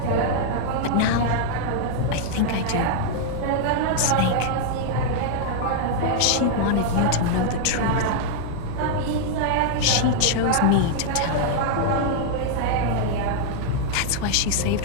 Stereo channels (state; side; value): different; both; correlation -0.01